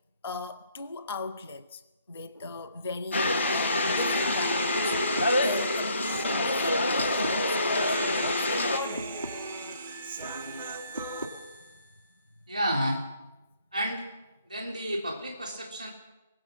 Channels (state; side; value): inverted; both; correlation -0.64